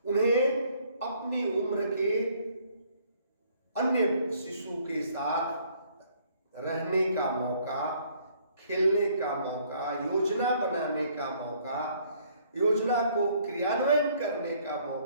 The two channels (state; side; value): inverted; both; correlation -0.63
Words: उन्हें अपनी उम्र के अन्य शिशु के साथ रहने का मौका, खेलने का मौका, योजना बनाने का मौका, योजना को क्रियान्वयन करने का